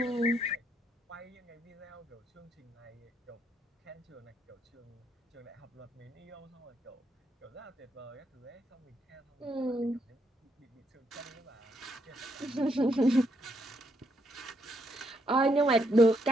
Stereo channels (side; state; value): both; normal; correlation 0.75